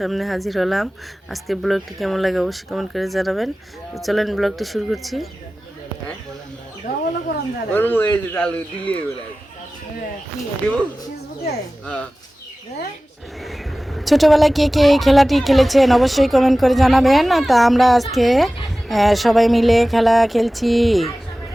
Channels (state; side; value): normal; both; correlation 0.97